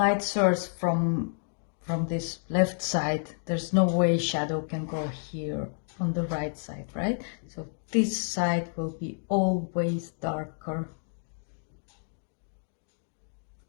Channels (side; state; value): right; silent; digital silence